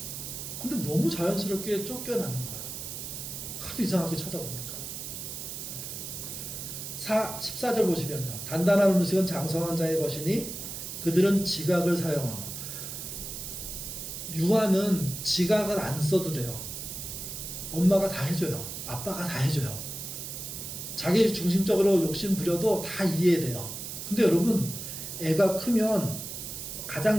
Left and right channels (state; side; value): noise; right; hiss, 7 dB below the sound